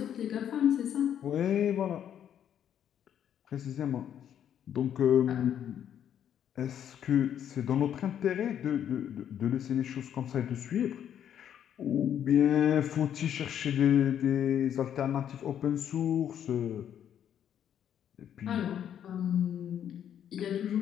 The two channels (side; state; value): right; quieter; 9.6 dB